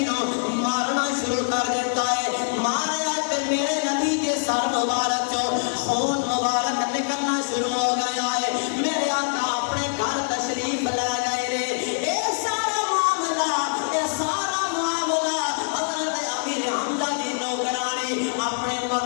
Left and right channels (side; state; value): right; silent; digital silence